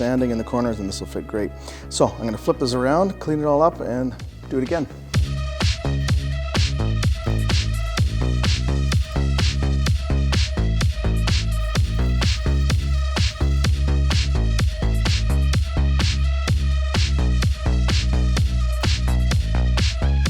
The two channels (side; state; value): both; identical; correlation 1.00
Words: in the corners and this will fit great. So I'm gonna flip this around, clean it all up, and do it again.